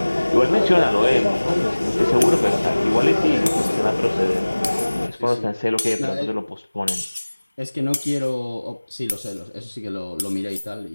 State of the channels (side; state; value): both; inverted; correlation -1.00